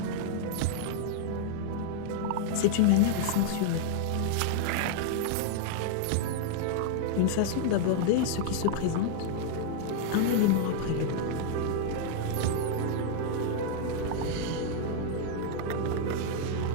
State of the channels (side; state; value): both; different; correlation -0.01